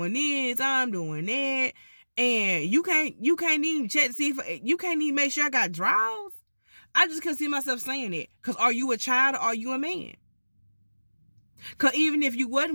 this. I'm doing that. And you can't even check to see if you can't even make sure I got drawers. I just couldn't see myself saying it. Because are you a child or are you a man? Because even if you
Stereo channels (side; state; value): both; inverted; correlation -1.00